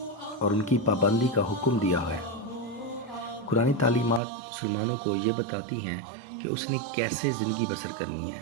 اور ان کی پابندی کا حکم دیا ہے۔ قرآنی تعلیمات مسلمانوں کو یہ بتاتی ہیں کہ اس نے کیسے زندگی بسر کرنی ہے،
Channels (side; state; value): left; drops out; at 4.2 s